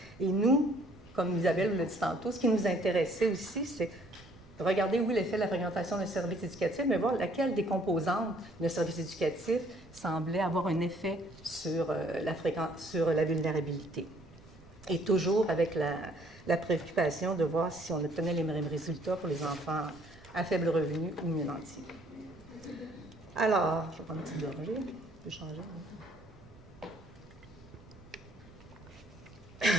Et nous, comme Isabelle l'a dit tantôt, ce qui nous intéressait aussi, c'est de regarder, oui, l'effet de la fréquentation d'un service éducatif, mais voir laquelle des composantes d'un service éducatif semblait avoir un effet sur la vulnérabilité. Et toujours avec la préoccupation de voir si on obtenait les mêmes résultats pour les enfants à faible revenu ou mieux nantis. Alors, je vais prendre une petite gorgée. Je peux changer.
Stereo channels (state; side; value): noise; right; rumble, 23 dB below the sound